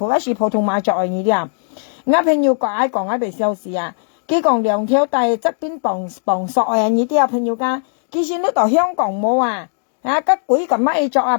一是普通話着呢啲啊！我朋友講喺度笑事啊！佢講兩條帶側邊綁索啊，呢啲啊朋友家，其實呢度香港冇啊，啊吉鬼咁乜作啊，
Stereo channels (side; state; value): right; silent; 68 dB below the other